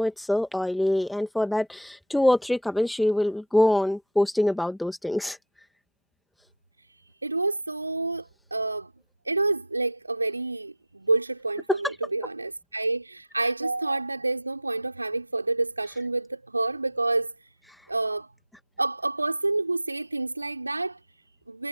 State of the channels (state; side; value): normal; both; correlation 0.05